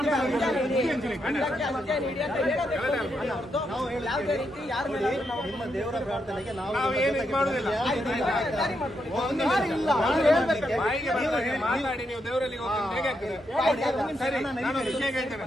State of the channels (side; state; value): both; normal; correlation 0.81